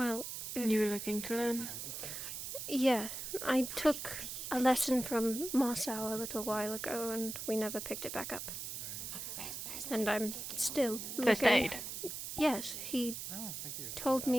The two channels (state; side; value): noise; right; hiss, 6 dB below the sound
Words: You were looking to learn? yeah, I took a lesson from Marcel a little while ago and we never picked it back up. And I'm still looking. First aid? Yes, he thank you. told